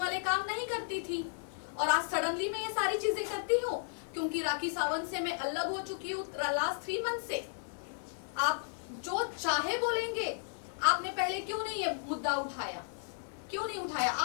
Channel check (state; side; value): silent; right; 55 dB below the other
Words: काम नहीं करती थी। और आज सडनली मैं ये सारी चीजें करती हूँ क्योंकि राखी सावंत से मैं अलग हो चुकी हूँ लास्ट 3 मंथ से। आप जो चाहे बोलेंगे, आपने पहले क्यों नहीं ये मुद्दा उठाया? क्यों नहीं उठाया?